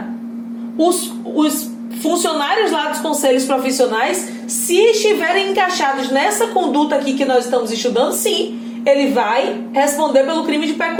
os funcionários lá dos conselhos profissionais, se estiverem encaixados nessa conduta aqui que nós estamos estudando, sim, ele vai responder pelo crime de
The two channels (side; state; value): both; identical; correlation 1.00